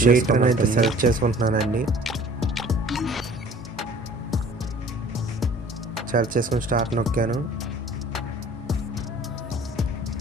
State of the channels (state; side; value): normal; both; correlation 0.50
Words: అయితే సెలెక్ట్ చేసుకుంటున్నానండి. సెలెక్ట్ చేసుకుని స్టార్ట్ నొక్కాను.